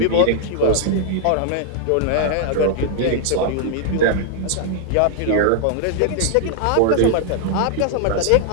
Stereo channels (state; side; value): different; both; correlation 0.00